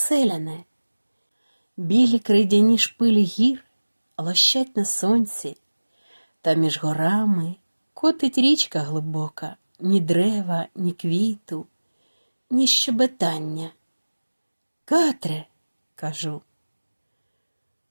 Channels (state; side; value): inverted; both; correlation -1.00